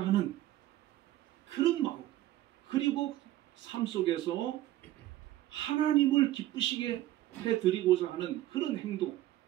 하는 그런 마음, 그리고 삶 속에서 하나님을 기쁘시게 해드리고자 하는 그런 행동,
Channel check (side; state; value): left; quieter; 14.7 dB